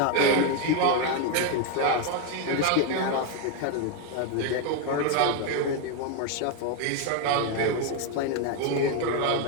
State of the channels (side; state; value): both; different; correlation 0.01